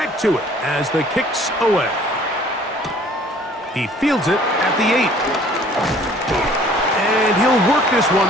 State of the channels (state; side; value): normal; both; correlation 0.54